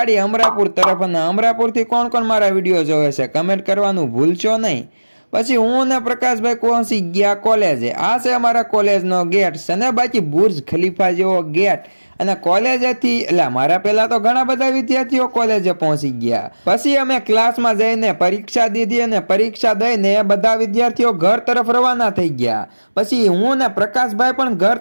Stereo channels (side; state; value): both; inverted; correlation -1.00